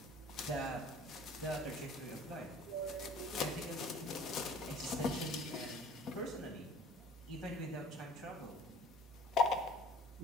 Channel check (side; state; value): both; normal; correlation 0.49